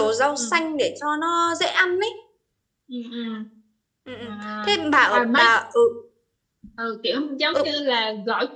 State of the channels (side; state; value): both; identical; correlation 1.00